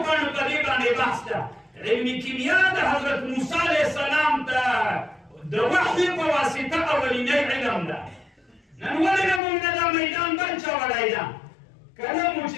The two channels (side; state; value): right; drops out; at 9.4 s